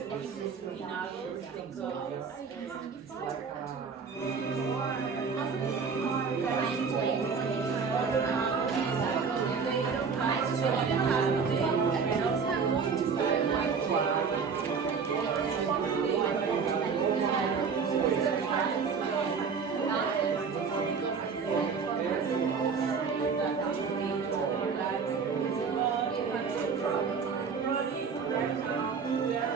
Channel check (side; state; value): left; quieter; 5.6 dB